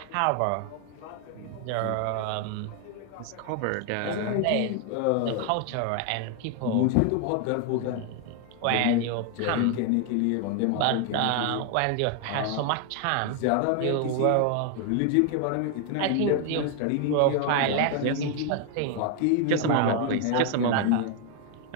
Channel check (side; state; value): both; different; correlation 0.00